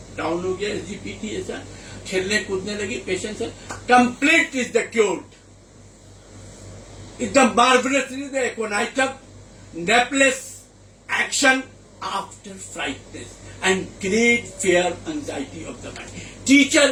डाउन हो गया, SGPT ऐसा, खेलने कूदने लगी, पेशेंट से कंप्लीट इज द क्योर्ड, एकदम marvellously the aconitum napellus action after frightness and great fear anxiety of the mind. Teacher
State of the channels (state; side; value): identical; both; correlation 1.00